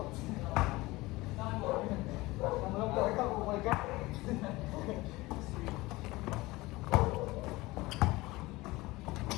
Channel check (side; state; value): right; quieter; 20.6 dB